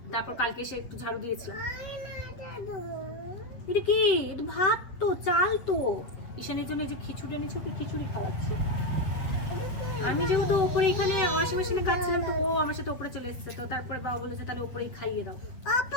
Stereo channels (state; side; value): late; right; 8.2 ms